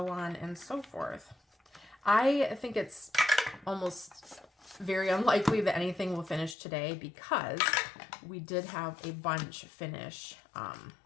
on and so forth. I think it's almost very unlikely that anything will finish today because we did have a bunch finish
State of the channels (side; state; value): right; drops out; at 6.6 s